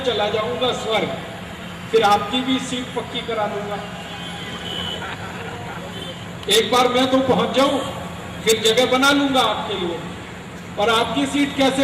चला जाऊंगा स्वर्ग, फिर आपकी भी सीट पक्की करा दूंगा। एक बार मैं तो पहुंच जाऊं, फिर जगह बना लूंगा आपके लिए। और आपकी सीट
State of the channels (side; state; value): both; identical; correlation 1.00